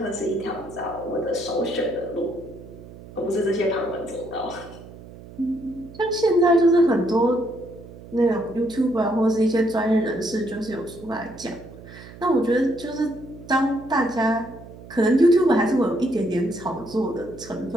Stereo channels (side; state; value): right; noise; hum, 17 dB below the sound